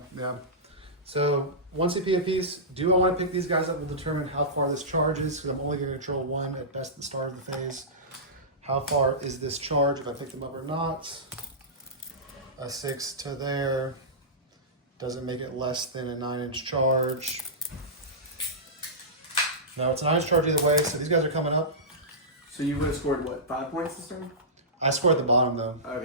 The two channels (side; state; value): both; normal; correlation -0.18